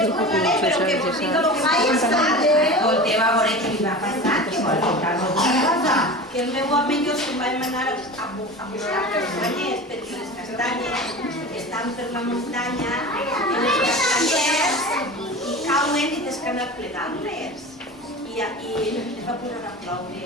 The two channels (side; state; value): both; normal; correlation 0.32